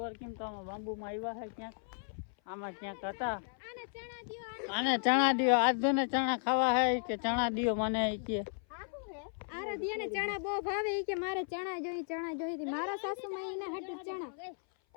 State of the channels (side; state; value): right; silent; 54 dB below the other